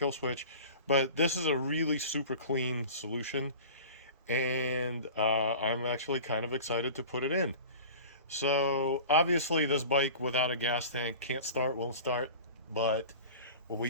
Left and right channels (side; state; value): both; inverted; correlation -0.38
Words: switch, but this is a really super clean solution, and I'm actually kind of excited to put it in. So obviously this bike without a gas tank can't start, won't start, but what